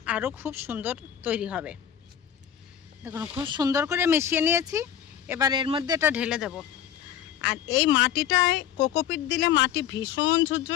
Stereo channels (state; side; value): quieter; right; 9.8 dB